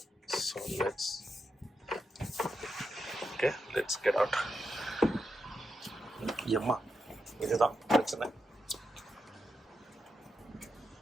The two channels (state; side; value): normal; both; correlation 0.86